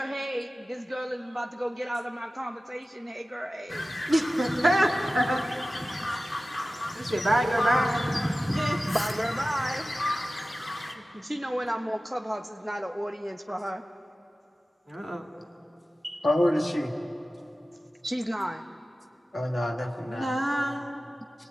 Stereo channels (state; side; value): normal; both; correlation 0.96